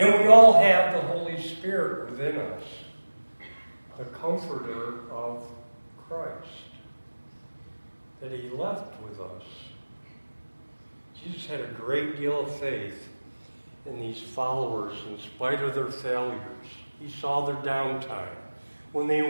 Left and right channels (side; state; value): both; inverted; correlation -1.00